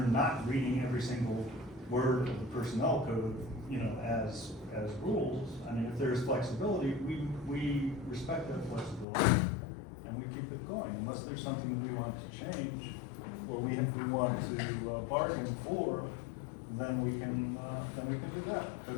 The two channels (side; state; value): right; drops out; at 9.1 s